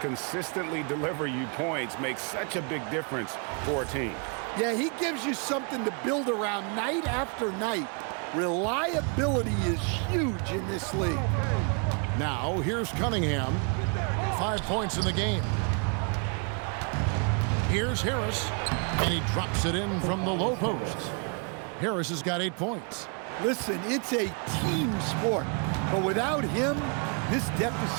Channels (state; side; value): quieter; left; 37.4 dB